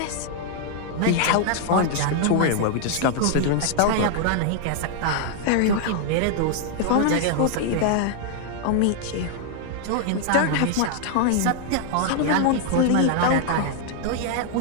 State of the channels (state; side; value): different; both; correlation 0.00